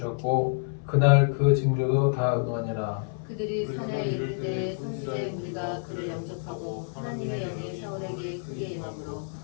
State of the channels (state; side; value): silent; right; 58 dB below the other